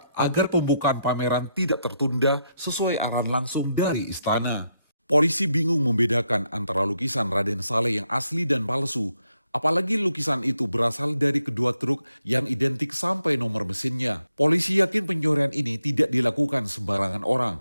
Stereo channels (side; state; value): both; inverted; correlation -0.80